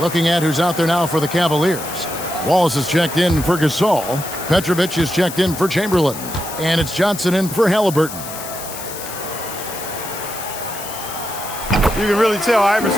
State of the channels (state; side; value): noise; left; hiss, 10 dB below the sound